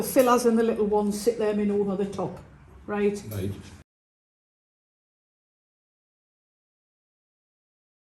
fillers and the little ones, sit them in over the top, right? Right.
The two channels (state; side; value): identical; both; correlation 1.00